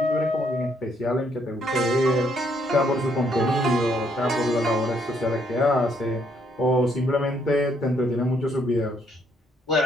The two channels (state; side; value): normal; both; correlation 0.70